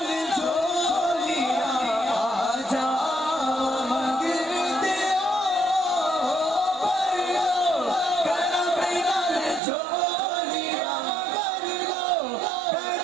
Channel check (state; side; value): drops out; left; at 9.6 s